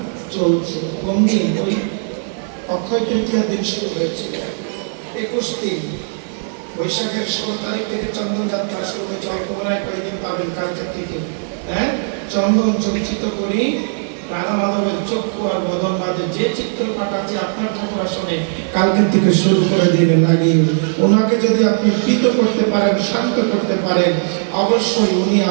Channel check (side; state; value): left; silent; digital silence